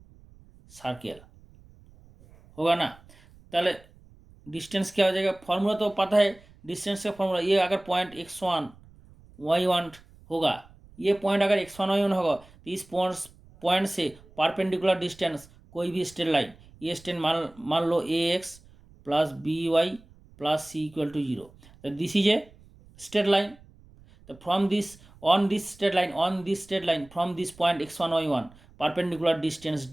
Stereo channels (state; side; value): noise; right; rumble, 25 dB below the sound